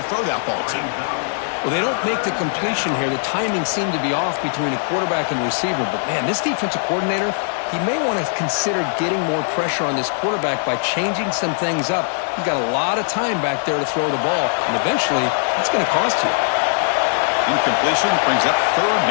throw that ball to. Well, they don't make the completion here. The timing seemed to be off between the quarterback and the receiver. But, man, this defensive coordinator, he may want to consider getting more pressure on this quarterback by changing some things up. He's got a lot of time back there to throw the ball. And eventually, it's going to cost you. Incompletion brings up third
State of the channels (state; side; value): silent; right; digital silence